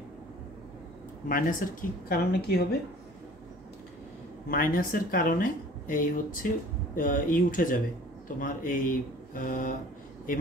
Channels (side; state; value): both; normal; correlation 0.48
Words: মাইনাসের কি কারণে কি হবে? মাইনাসের কারণে এই হচ্ছে উঠে যাবে তোমার, এই